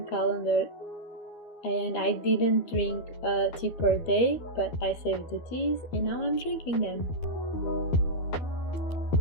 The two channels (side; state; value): right; late; 12 ms